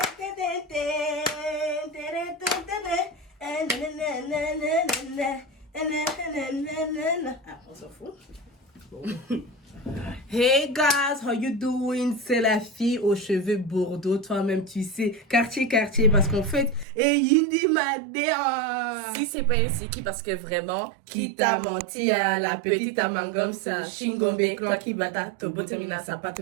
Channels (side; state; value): left; drops out; at 16.9 s